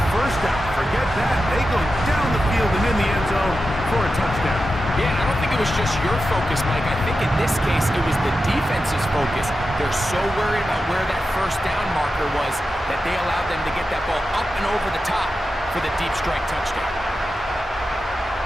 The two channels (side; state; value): both; normal; correlation 0.91